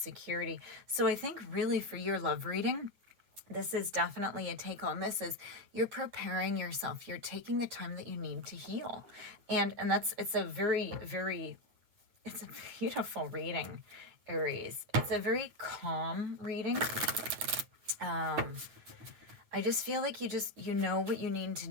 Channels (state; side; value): late; left; 8.9 ms